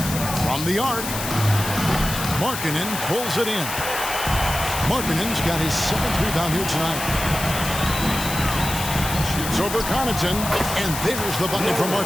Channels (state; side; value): noise; left; hiss, 6 dB below the sound